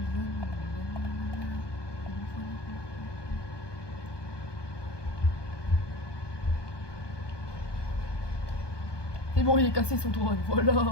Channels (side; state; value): right; late; 1.2 ms